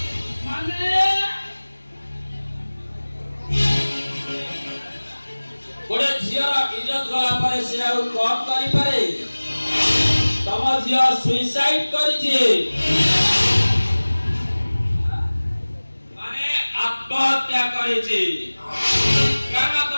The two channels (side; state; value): both; inverted; correlation -1.00